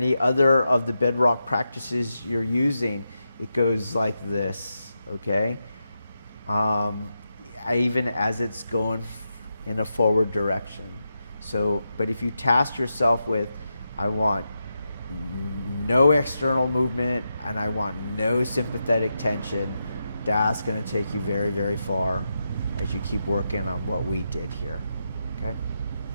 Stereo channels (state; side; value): inverted; both; correlation -0.87